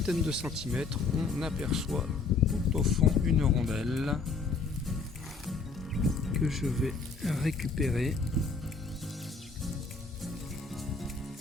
de centimètres, on aperçoit tout au fond une rondelle que je vais récupérer.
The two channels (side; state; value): right; quieter; 4.4 dB